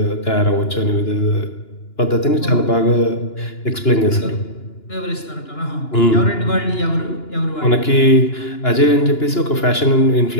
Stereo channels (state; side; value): late; right; 2.9 ms